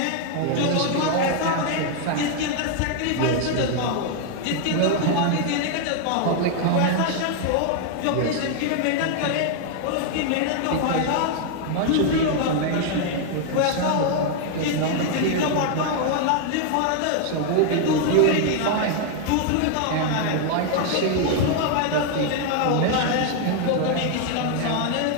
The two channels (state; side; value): different; both; correlation 0.00